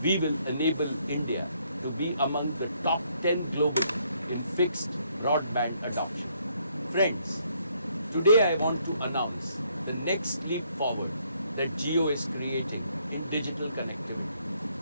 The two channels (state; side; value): inverted; both; correlation -0.70